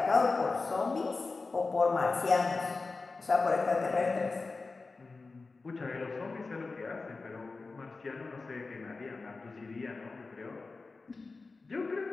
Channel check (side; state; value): right; quieter; 3.9 dB